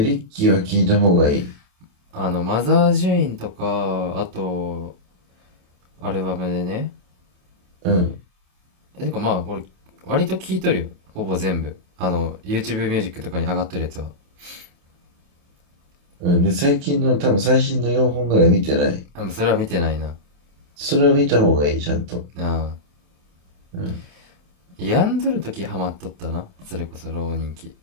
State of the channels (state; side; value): late; left; 28 ms